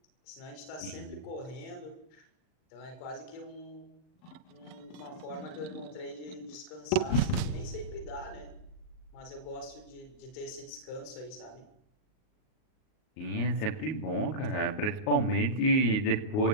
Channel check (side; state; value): right; late; 38 ms